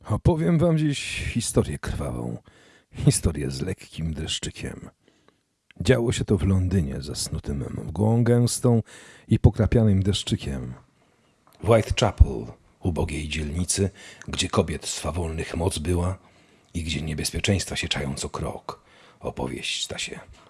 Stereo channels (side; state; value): both; identical; correlation 1.00